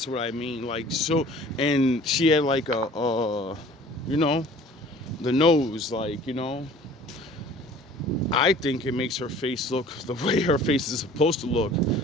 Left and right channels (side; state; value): both; normal; correlation 0.49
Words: what I mean. Like, so, and she had like the nose, like, I think it makes her face look the way her face is supposed to look.